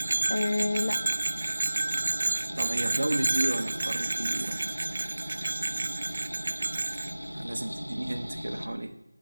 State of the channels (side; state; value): both; inverted; correlation -0.98